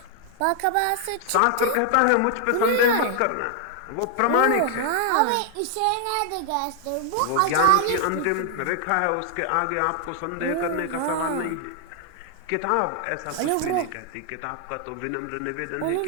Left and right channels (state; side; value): different; both; correlation 0.00